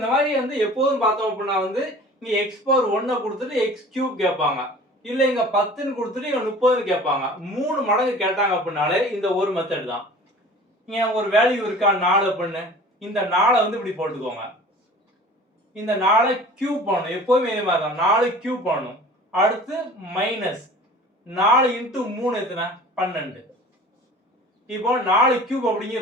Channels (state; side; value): normal; both; correlation 0.44